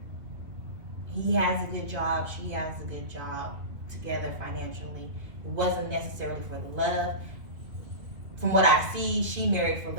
He has a good job, she has a good job, together financially. It wasn't necessarily for the love. From what I see, she married for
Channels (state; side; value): late; left; 2.5 ms